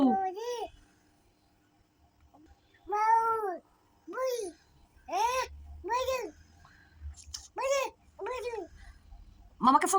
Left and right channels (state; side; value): identical; both; correlation 1.00